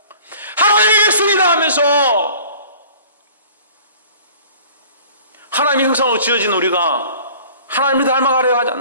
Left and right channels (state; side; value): inverted; both; correlation -0.48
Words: 하나님의 백성이다 하면서 하나님의 형상으로 지어진 우리가 하나님을 닮아가려 하지